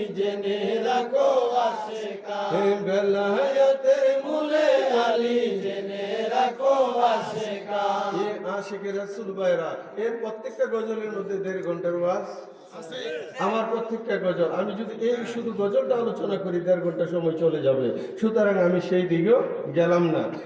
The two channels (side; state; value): both; identical; correlation 1.00